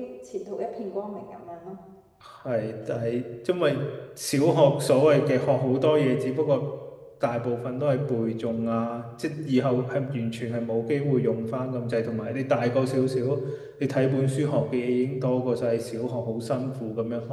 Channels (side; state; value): both; identical; correlation 1.00